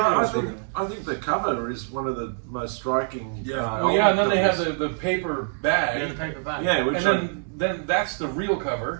I think the cover is one of the most striking. Yeah. Oh yeah, and then they have covers. the paper bag. Yeah, the paper bag. Yeah, which And then that's the real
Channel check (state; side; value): silent; left; digital silence